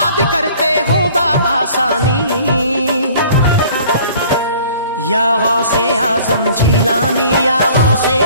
करते हो आसानी। या गौसे आजम जीलानी, या गौसे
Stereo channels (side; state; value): both; inverted; correlation -0.52